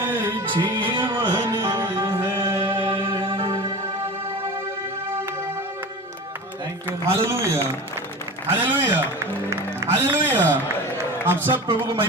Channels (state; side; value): normal; both; correlation 0.33